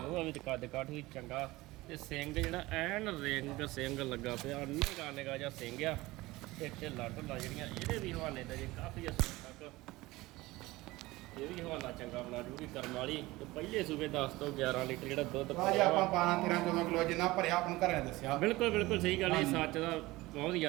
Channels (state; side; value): quieter; left; 19.8 dB